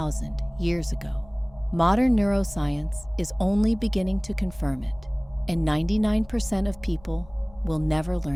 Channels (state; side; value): noise; left; rumble, 24 dB below the sound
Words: years ago. Modern neuroscience is only beginning to confirm it, and 99% of people will never